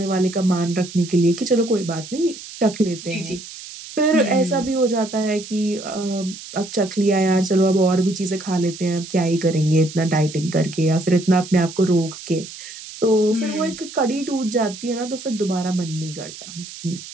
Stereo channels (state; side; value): noise; right; hiss, 14 dB below the sound